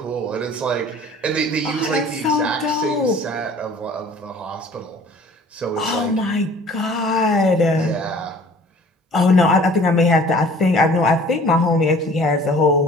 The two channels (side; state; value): both; normal; correlation 0.50